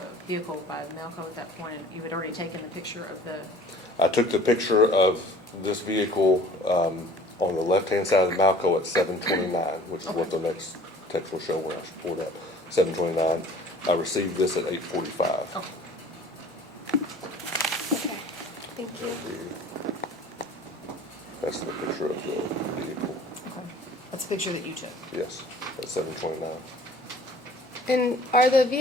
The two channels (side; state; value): both; normal; correlation 0.49